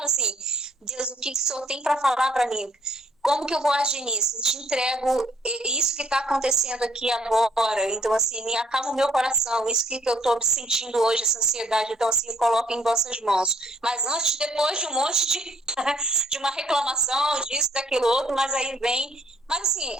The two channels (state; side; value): normal; both; correlation 0.64